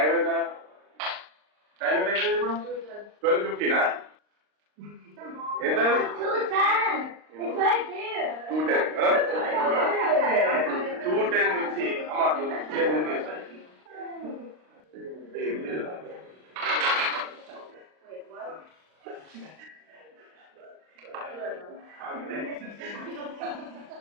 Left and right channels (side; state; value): left; late; 39 ms